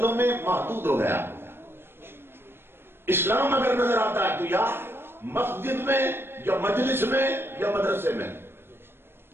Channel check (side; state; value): left; late; 0.11 ms